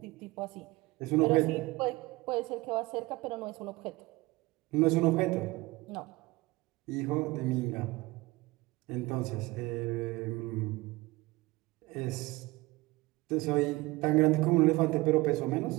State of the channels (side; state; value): left; quieter; 21.2 dB